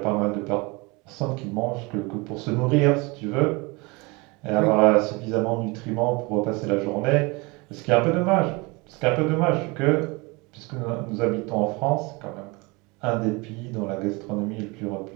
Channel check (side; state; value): left; quieter; 26.4 dB